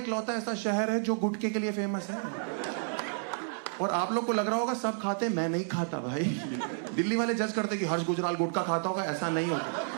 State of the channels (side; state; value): left; silent; digital silence